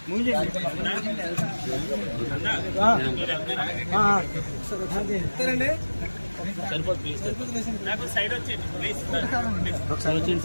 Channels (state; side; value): inverted; both; correlation -1.00